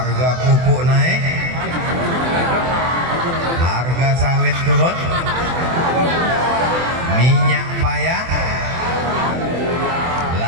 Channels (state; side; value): late; left; 24 ms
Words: pupuk naik, harga sawit turun, minyak payah,